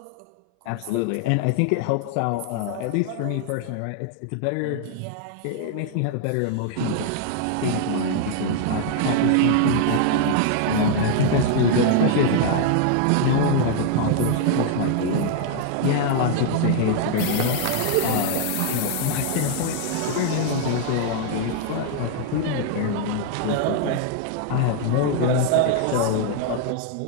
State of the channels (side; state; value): both; different; correlation 0.00